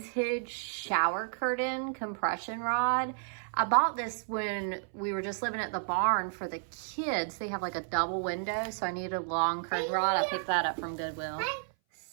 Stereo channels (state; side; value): silent; left; 56 dB below the other